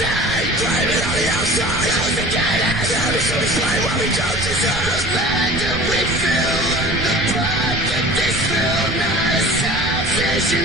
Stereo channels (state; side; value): noise; right; rumble, 7 dB below the sound